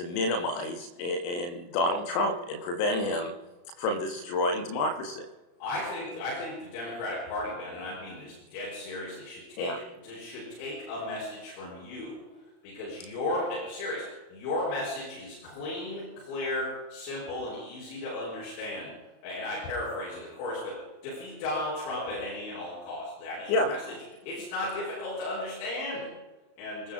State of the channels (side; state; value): right; late; 34 ms